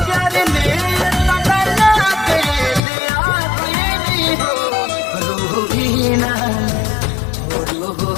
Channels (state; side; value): drops out; right; at 2.8 s